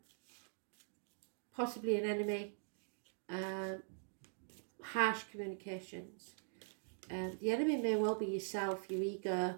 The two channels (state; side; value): silent; left; digital silence